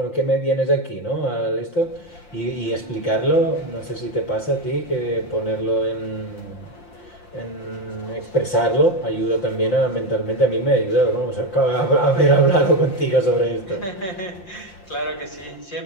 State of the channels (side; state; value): right; late; 5.7 ms